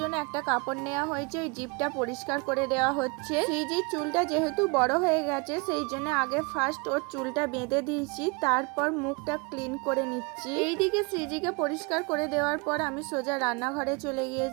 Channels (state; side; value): quieter; left; 29.9 dB